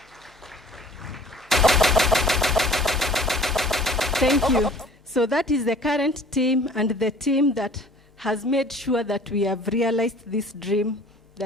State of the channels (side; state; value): both; normal; correlation 0.50